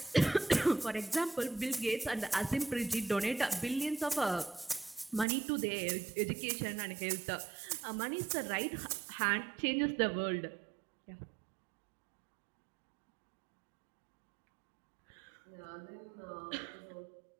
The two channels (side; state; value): left; drops out; at 5.2 s